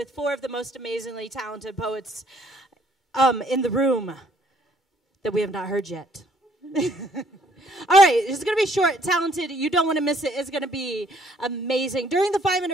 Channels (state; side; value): normal; both; correlation 0.64